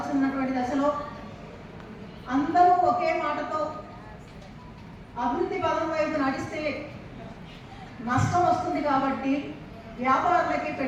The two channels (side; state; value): both; identical; correlation 1.00